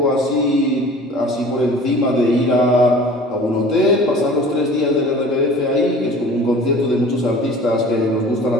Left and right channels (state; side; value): normal; both; correlation 0.44